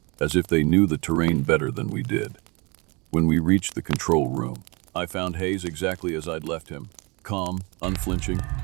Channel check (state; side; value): quieter; left; 28.8 dB